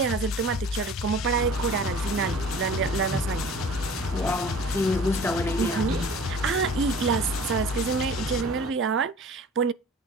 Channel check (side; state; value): both; normal; correlation 0.44